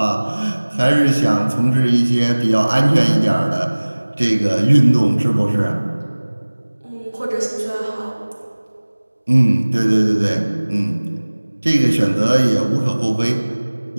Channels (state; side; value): inverted; both; correlation -1.00